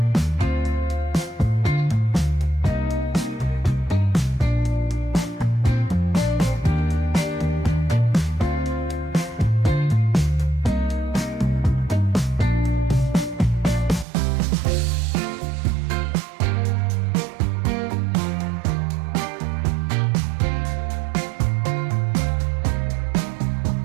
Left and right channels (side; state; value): left; drops out; at 14.1 s